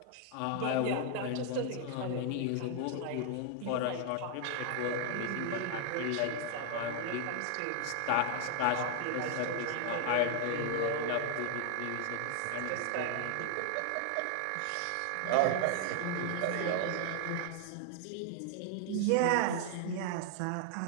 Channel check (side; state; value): both; different; correlation 0.00